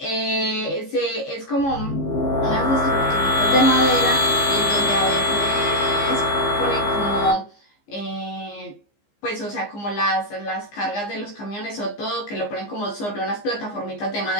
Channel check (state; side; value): late; right; 15 ms